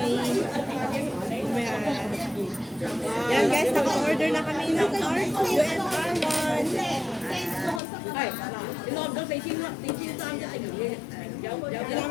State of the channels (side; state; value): right; drops out; at 7.8 s